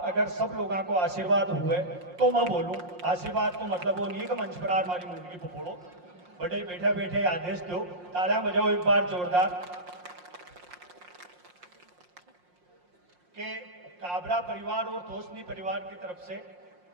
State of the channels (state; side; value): late; left; 5.6 ms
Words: अगर सब लोगों को आशीर्वाद हुए तो मैं बोलूं, आशीर्वाद को मतलब वो नहीं कि मंच पर हमारी मुंडकी पकड़ो, बड़े बैठे बैठे आदेश दो, तालियां बजाओ एक बार जोरदार के काबरा परिवार और तोशनी परिवार की तरफ से